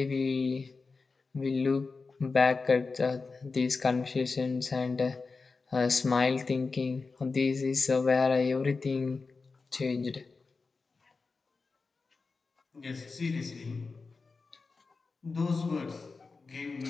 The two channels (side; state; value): right; quieter; 4.2 dB